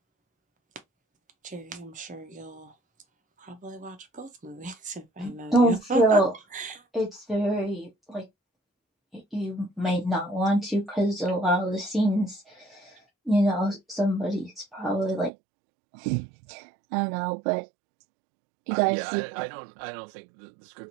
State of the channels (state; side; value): drops out; left; at 15.3 s